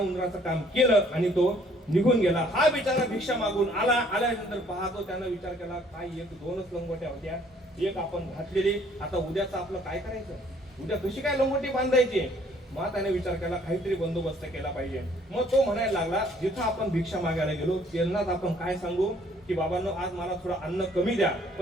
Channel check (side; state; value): both; normal; correlation 0.61